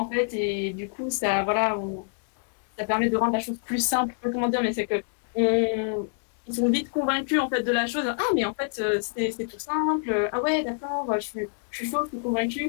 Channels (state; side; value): silent; right; digital silence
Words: fait, et du coup, ça permet de rendre la chose plus simple. Je sais pas comment dire, mais c'est que ils sont vite convaincus en fait de la chose. Ah, mais en fait, c'est tout simple. Ah ouais, d'accord, je suis chaud, je suis